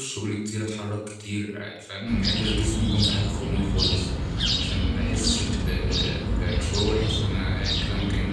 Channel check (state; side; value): identical; both; correlation 1.00